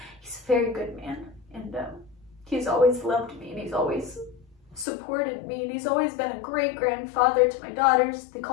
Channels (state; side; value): drops out; right; at 4.9 s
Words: He's a very good man, and he's always loved me, and he's always supported me, and he's always been a great grandfather to my daughters. They